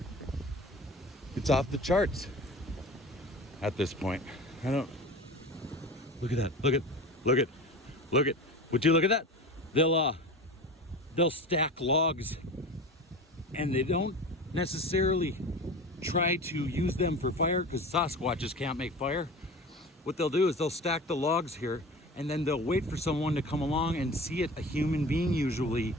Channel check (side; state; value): both; normal; correlation 0.34